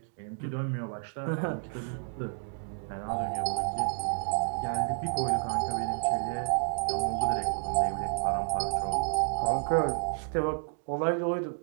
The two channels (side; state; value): left; silent; 57 dB below the other